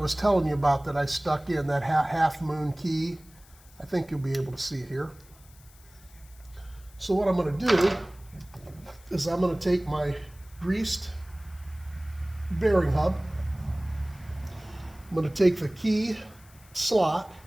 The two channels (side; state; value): left; noise; hiss, 26 dB below the sound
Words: telling you about that I stuck in, that half moon key. I think you'll be able to see it here. So what I'm going to do is I'm going to take my greased bearing hub. I'm going to take the key slot,